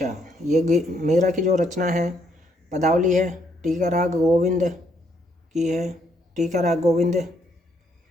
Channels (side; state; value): both; normal; correlation 0.71